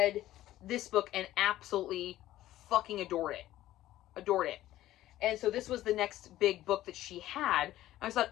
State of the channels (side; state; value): right; quieter; 14.4 dB